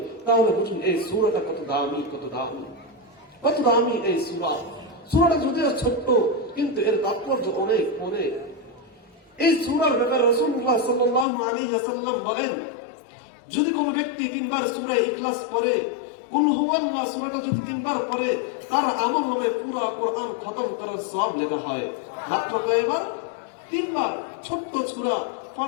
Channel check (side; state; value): right; drops out; at 11.2 s